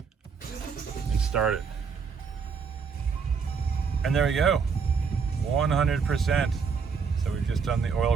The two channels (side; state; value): left; quieter; 5.7 dB